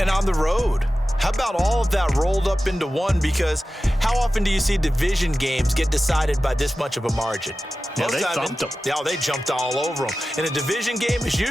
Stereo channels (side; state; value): both; normal; correlation 0.95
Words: And on the road. How about all of that rolled up into one? Because how often do you see division games get decided by this much of a margin? Yeah, they thumped them. Yeah, they jumped all over them. And a division game is